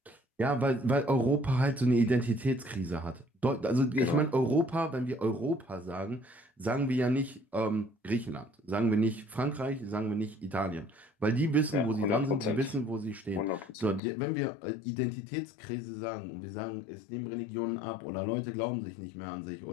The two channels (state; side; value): drops out; right; at 14.0 s